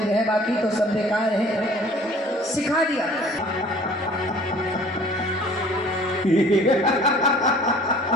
है, बाकी तो सब बेकार है। सिखा दिया।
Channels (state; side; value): normal; both; correlation 0.50